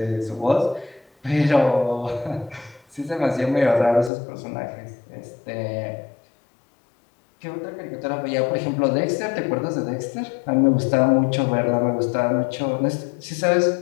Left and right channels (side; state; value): right; drops out; at 4.1 s